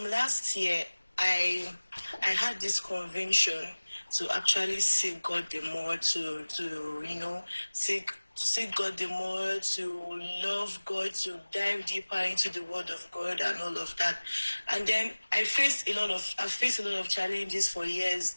last year, I had this conviction to actually seek God the more, to seek God the more, to love God, to dive deeper into the Word of God and all of that. And then I've faced a lot of challenges for years,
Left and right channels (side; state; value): both; inverted; correlation -1.00